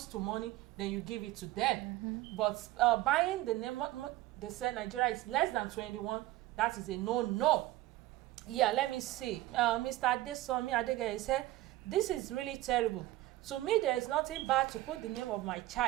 to money, then you give it to them. But buying the name, they say Nigeria is less than 21, that is a no. Yeah, let me see. Mr. Adesomi Adegeye said, this is really terrible. To me, there is nothing bad to put the name of my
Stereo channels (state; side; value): quieter; left; 16.7 dB